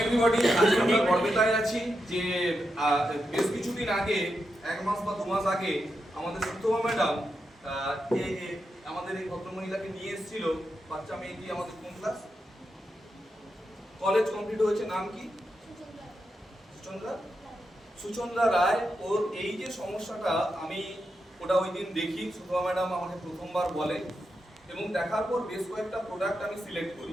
everybody, আজকে আমরা গর্বিতায় আছি যে বেশ কিছুদিন আগে, এক মাস বা 2 মাস আগে আমাদের সুতমা ম্যাডাম আমাদের এই ভদ্রমহিলাকে নিয়ে এসেছিল। বাচ্চা মেয়েটি আমাদের কোন ক্লাস, কলেজ কমপ্লিট হয়েছে, নাম কি? সুচন্দ্রা রায়। ওর এই যে সমস্যাটা, আমি ওটা ওই দিন দেখি, সুতমা ম্যাডাম আমাকে প্রথমবার বলে এবং দেখার পর বেশ কয়েকটা প্রোডাক্ট আমি সিলেক্ট করি।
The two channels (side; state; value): both; normal; correlation 0.86